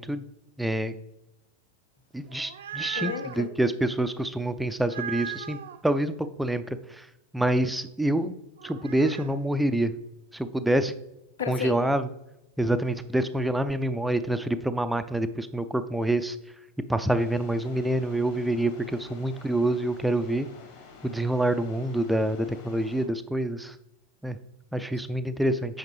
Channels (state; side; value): normal; both; correlation 0.77